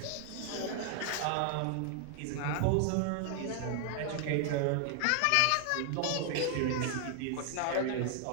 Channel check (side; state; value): both; different; correlation 0.00